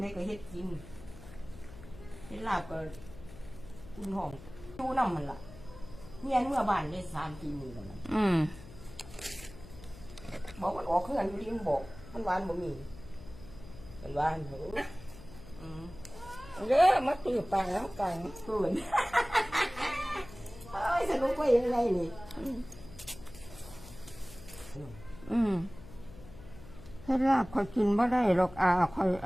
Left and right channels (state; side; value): noise; left; hum, 17 dB below the sound